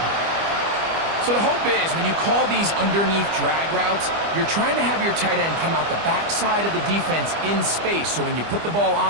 So the hope is when you call these underneath drag routes, you're trying to have your tight end come out the backside of the defense in space. So when you put the ball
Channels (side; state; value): left; late; 25 ms